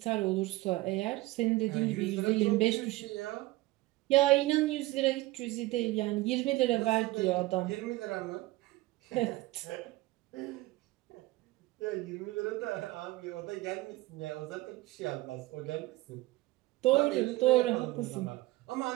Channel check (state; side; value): quieter; left; 19.3 dB